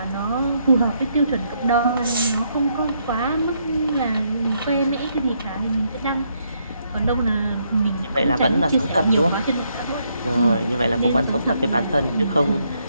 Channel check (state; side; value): inverted; both; correlation -0.75